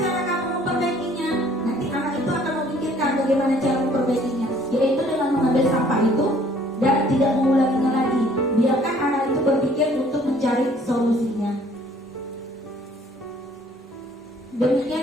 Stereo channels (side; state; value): both; normal; correlation 0.58